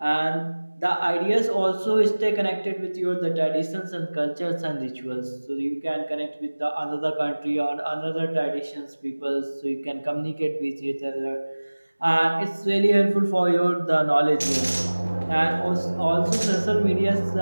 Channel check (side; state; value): both; inverted; correlation -1.00